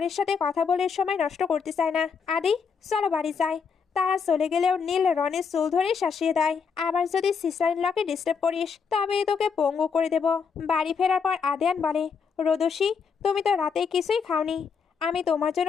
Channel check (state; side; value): quieter; right; 6.0 dB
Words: সাথে কথা বলে সময় নষ্ট করতে চায় না। আদি, চলো বাড়ি যাই। তারা চলে গেলেও নীল রনির চুল ধরে শাসিয়ে দেয়, আবার যদি সিস্টার ইন লকে ডিস্টার্ব করিস তবে তোকে পঙ্গু করে দেব। বাড়ি ফেরার পর আদিয়ান বলে, রোদসী, তুমি তো রাতে কিছুই খাওনি, আমি তোমার